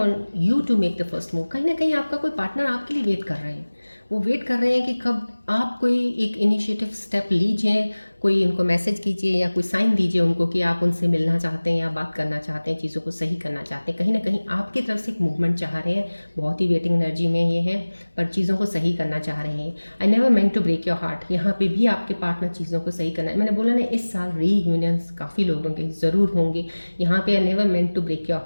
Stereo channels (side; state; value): both; inverted; correlation -1.00